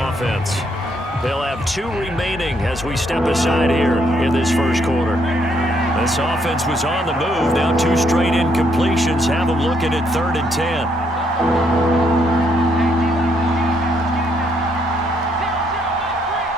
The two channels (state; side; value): normal; both; correlation 0.72